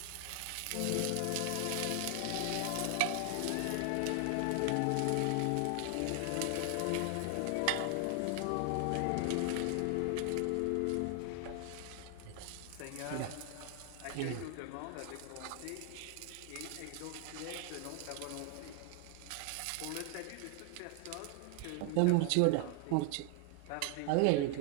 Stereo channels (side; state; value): both; different; correlation 0.00